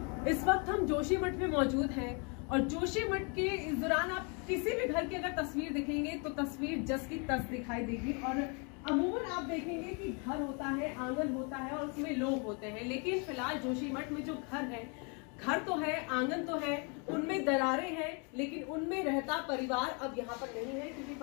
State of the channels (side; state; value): right; quieter; 34.9 dB